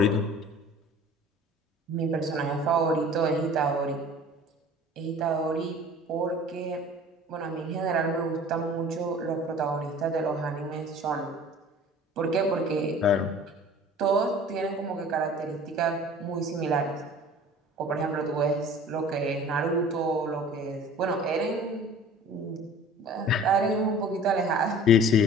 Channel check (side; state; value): both; normal; correlation 0.45